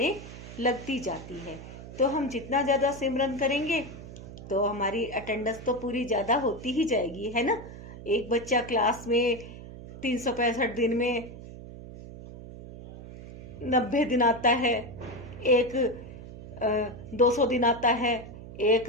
लगती जाती है। तो हम जितना ज़्यादा सिमरन करेंगे तो हमारी अटेंडेंस तो पूरी ज़्यादा होती ही जाएगी, है ना। एक बच्चा क्लास में 365 दिन में 90 दिन आता है, एक 200 दिन आता है, एक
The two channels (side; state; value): right; noise; hum, 14 dB below the sound